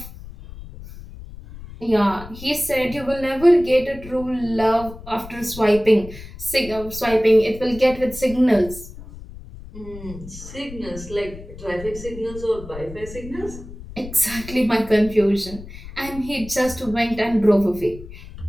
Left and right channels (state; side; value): noise; left; rumble, 15 dB below the sound